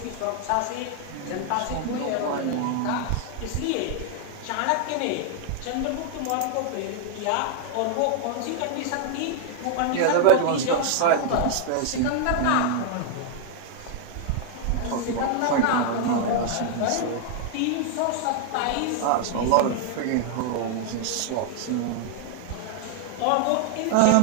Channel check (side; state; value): both; different; correlation -0.01